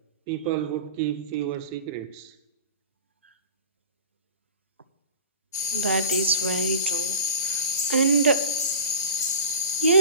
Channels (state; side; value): inverted; both; correlation -0.37